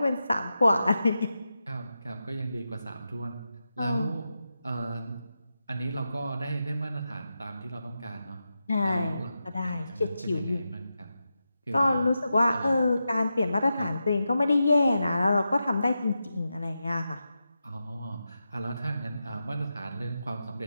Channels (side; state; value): both; inverted; correlation -0.89